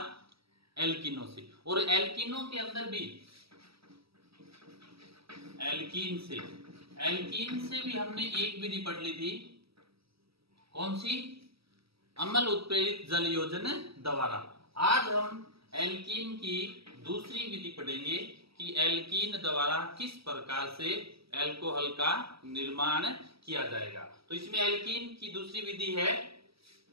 एल्किनो से। और एल्किनो के अंदर भी एल्कीन से भी हमने एक विधि पढ़ ली थी। कौन सी? अम्ल उत्प्रेरित जल योजन द्वारा। आज हम एल्कीन की दूसरी विधि पढ़ेंगे कि एल्कीन द्वारा किस प्रकार से अल्कोहल का निर्माण किया जाएगा। तो इसमें एल्कीन की दूसरी विधि है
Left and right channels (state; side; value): late; left; 0.76 ms